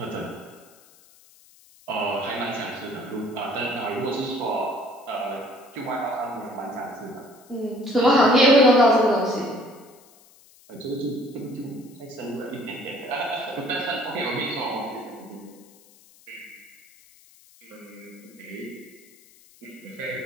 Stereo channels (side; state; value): left; noise; hiss, 26 dB below the sound